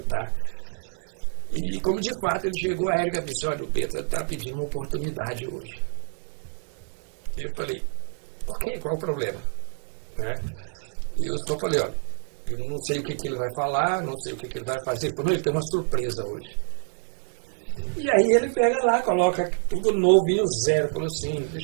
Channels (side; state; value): left; silent; digital silence